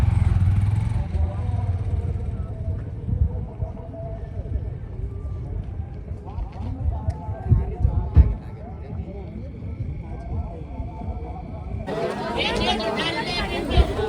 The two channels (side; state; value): both; identical; correlation 1.00